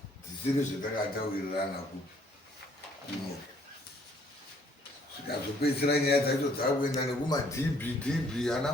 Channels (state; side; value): normal; both; correlation 0.63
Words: dzisiri zvatakatawirirana kuno zvikazopedzisira nyaya dzacho dzakuenda nekumadb ana